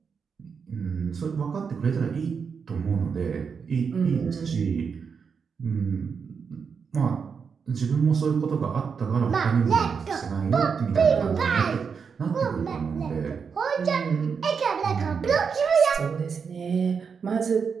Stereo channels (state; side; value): quieter; left; 6.0 dB